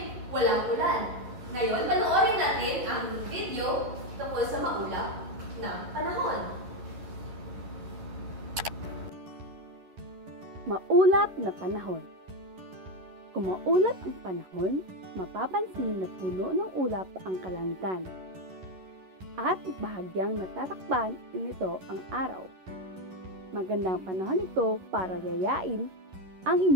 walang ulan. Ngayon, panoorin natin ang video tungkol sa maulap na panahon. Maulap na panahon. Kung maulap ang panahon, mapapansin na puno ng ulap ang kalangitan. At bahagyang natatakpan nito ang araw. Magandang panahon ito para yayain ang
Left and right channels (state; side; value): late; left; 11 ms